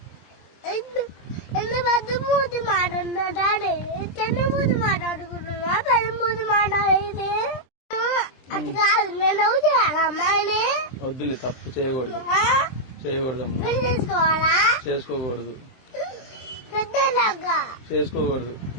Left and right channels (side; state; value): right; late; 23 ms